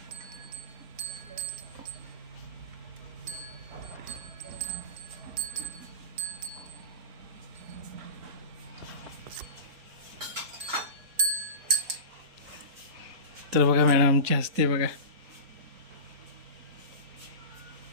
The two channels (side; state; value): left; late; 4.1 ms